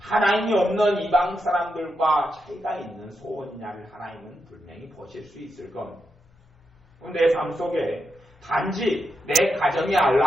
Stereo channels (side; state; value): both; normal; correlation 0.85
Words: 없는 이방 사람들과 차이가 있는 소원이냐를 하나님은 분명히 보실 수 있을 겁니다. 내 삶 속에 단지 내 가정의